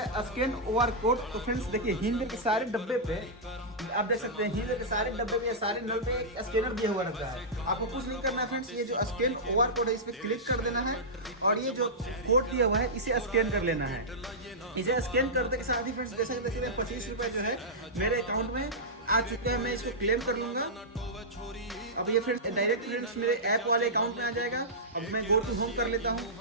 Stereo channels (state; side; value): normal; both; correlation -0.12